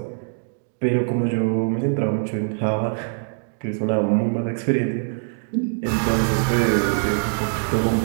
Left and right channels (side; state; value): left; silent; digital silence